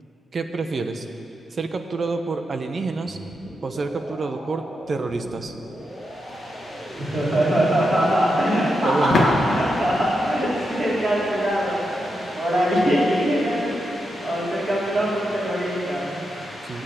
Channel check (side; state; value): both; normal; correlation 0.85